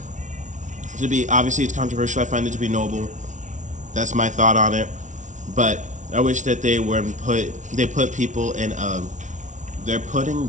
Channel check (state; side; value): late; left; 0.36 ms